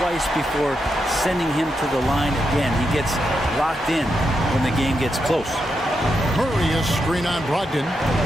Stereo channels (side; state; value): both; normal; correlation 0.84